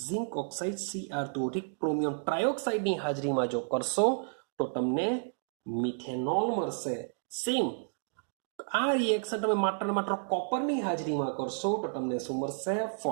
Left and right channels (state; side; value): silent; left; digital silence